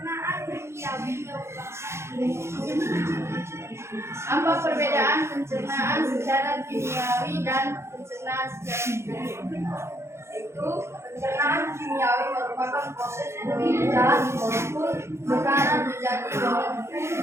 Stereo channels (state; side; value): late; left; 0.13 ms